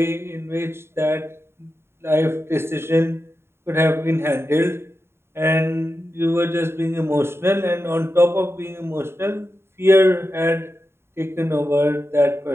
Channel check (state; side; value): late; left; 0.12 ms